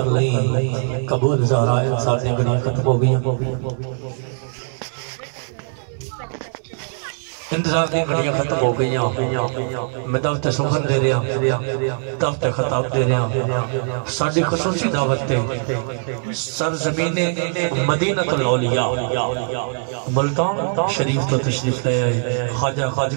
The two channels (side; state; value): left; silent; digital silence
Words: لئی قبول زہرا۔ انسان نے گھڑیاں ختم ہو گئی، انتظار کی گھڑیاں ختم ہو گئی، میں دعوت سخن دے رہا، دعوت خطاب دے رہا، ساڑھی خصوصی دعوت تے سرزمین مدینہ الاولیاء ملتان شریف تو تشریف لے آئے، خواجہ